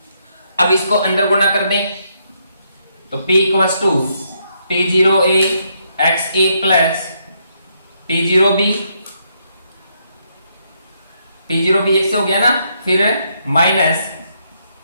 अब इसको अंदर गुणा कर दें तो P equals to P0A XA plus P0B, P0B एक से हो गया ना, फिर माइनस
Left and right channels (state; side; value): inverted; both; correlation -0.76